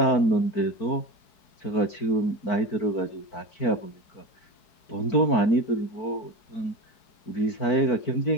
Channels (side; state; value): right; late; 4.5 ms